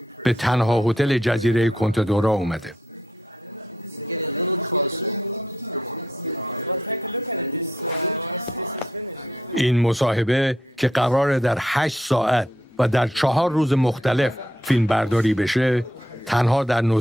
به تنها هتل جزیره کنتدورا اومده. این مصاحبه که قراره در 8 ساعت و در 4 روز مختلف فیلم برداری بشه، تنها در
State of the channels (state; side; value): normal; both; correlation 0.76